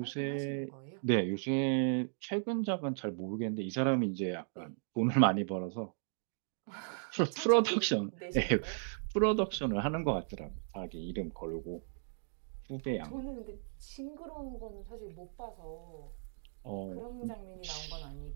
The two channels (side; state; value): left; silent; digital silence